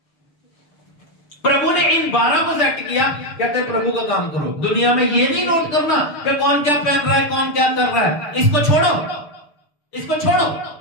प्रभु ने इन 12 को सेट किया, कहते हैं प्रभु का काम करो। दुनिया में ये नहीं नोट करना कि कौन क्या पहन रहा है, कौन क्या कर रहा है, इसको छोड़ो, इसको छोड़ो।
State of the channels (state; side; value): late; right; 6.7 ms